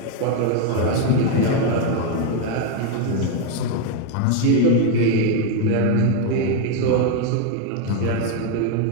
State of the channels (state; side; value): different; both; correlation 0.01